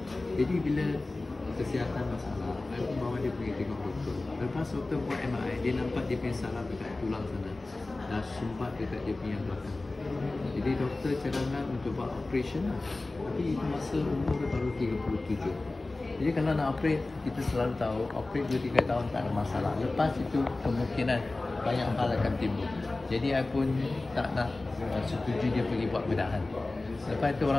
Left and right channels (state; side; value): quieter; right; 3.1 dB